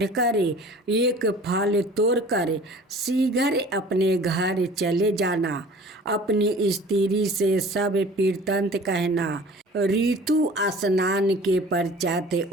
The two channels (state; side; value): normal; both; correlation 0.45